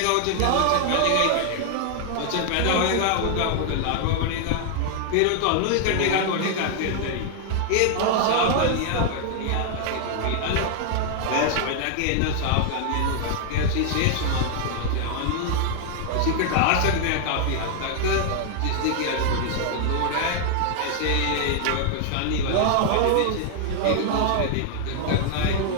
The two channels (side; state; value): both; different; correlation 0.00